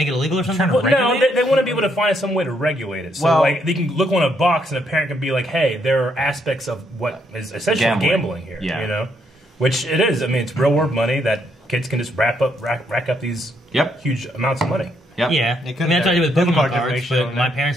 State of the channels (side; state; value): both; normal; correlation 0.74